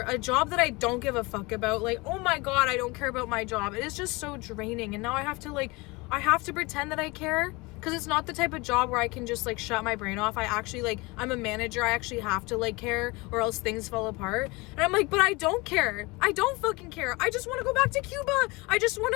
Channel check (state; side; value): quieter; right; 24.7 dB